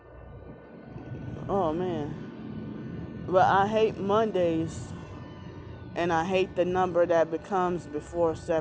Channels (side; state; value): both; identical; correlation 1.00